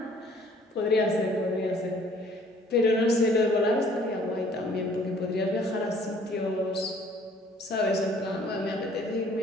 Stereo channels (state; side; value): normal; both; correlation 0.57